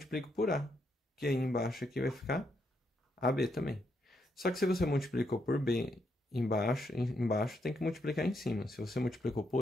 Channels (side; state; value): both; normal; correlation 0.78